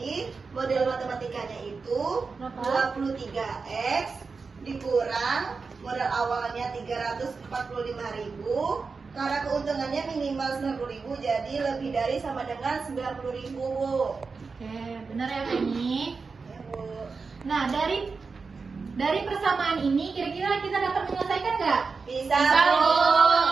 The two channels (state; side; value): quieter; left; 4.7 dB